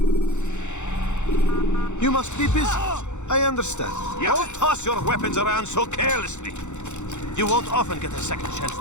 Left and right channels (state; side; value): late; right; 0.84 ms